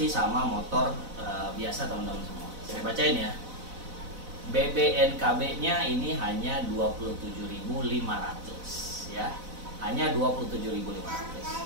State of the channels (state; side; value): late; left; 4.0 ms